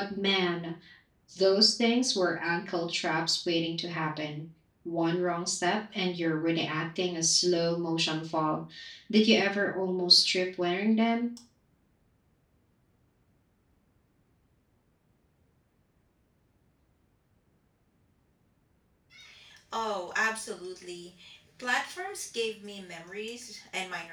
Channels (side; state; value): both; identical; correlation 1.00